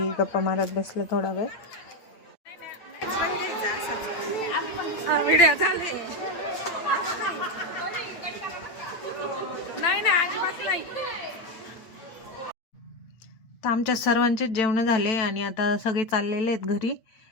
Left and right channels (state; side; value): late; right; 8.9 ms